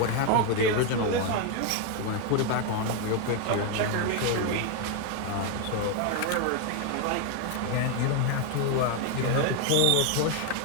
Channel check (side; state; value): both; different; correlation 0.01